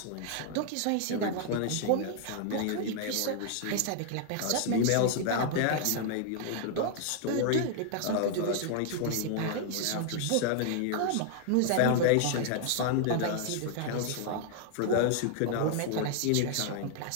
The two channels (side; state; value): both; different; correlation 0.00